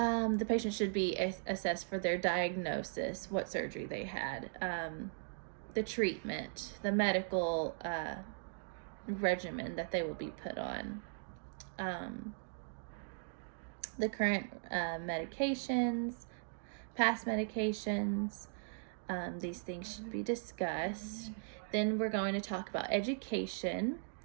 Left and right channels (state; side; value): silent; left; digital silence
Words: patient should be assessed for their diagnosis, what surgery they had, the treatment, the medical regimen that they will be put on, the current medications, past medications. These things should be discussed. Then we're going to talk about education.